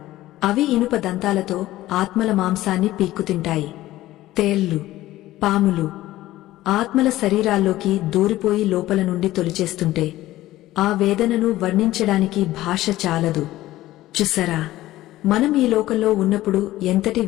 అవి ఇనుప దంతాలతో ఆత్మల మాంసాన్ని పీక్కుతింటాయి. తేళ్లు, పాములు ఆత్మల శరీరాల్లోకి దూరిపోయి లోపల నుండి తొలిచేస్తుంటే ఆ వేదనను వర్ణించడానికి భాష చాలదు. చూసారా, మనం ఈ లోకంలో ఉన్నప్పుడు ఎంతటి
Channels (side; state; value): right; quieter; 15.8 dB